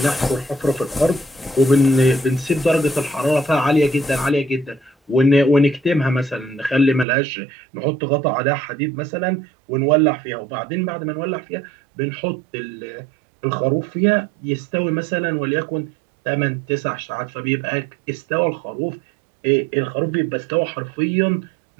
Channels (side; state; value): left; drops out; at 7.1 s